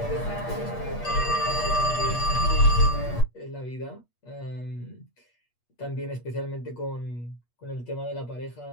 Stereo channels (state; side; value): late; right; 8.4 ms